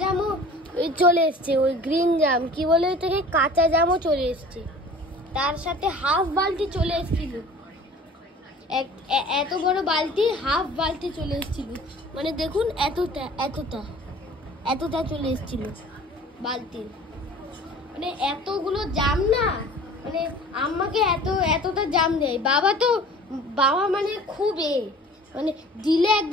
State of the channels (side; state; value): both; normal; correlation 0.46